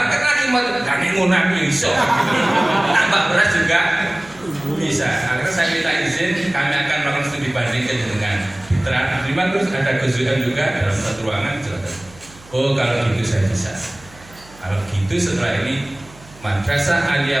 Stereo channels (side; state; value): right; noise; hum, 23 dB below the sound